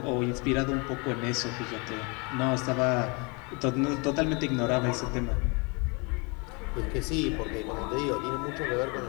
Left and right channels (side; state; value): right; quieter; 31.1 dB